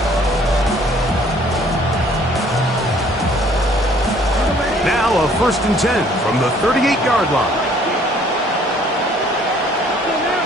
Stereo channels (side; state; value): both; normal; correlation 0.59